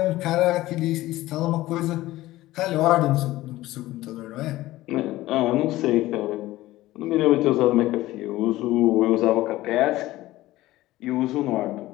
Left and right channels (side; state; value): right; quieter; 16.8 dB